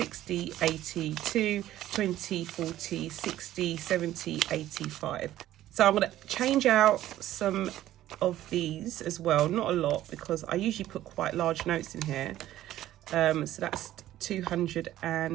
82, 20, 40, 60, 70, 85. So I'm going to change out some of these as well. Not a lot, because I usually put quite large notes in here. So that's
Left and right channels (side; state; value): left; quieter; 13.6 dB